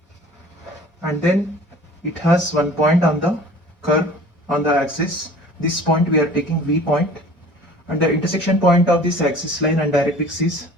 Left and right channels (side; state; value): both; normal; correlation 0.46